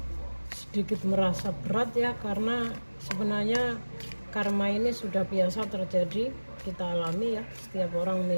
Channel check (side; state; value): both; inverted; correlation -1.00